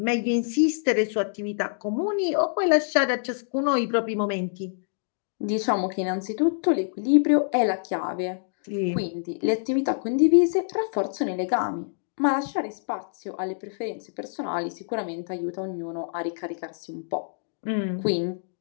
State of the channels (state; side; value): silent; right; digital silence